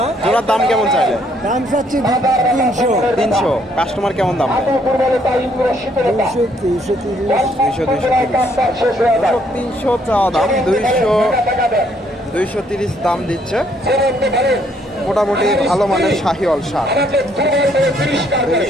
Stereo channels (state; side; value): normal; both; correlation 0.68